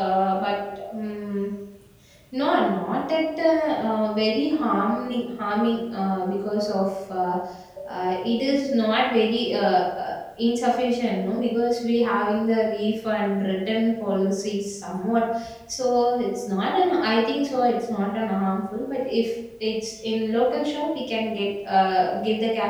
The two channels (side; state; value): both; identical; correlation 1.00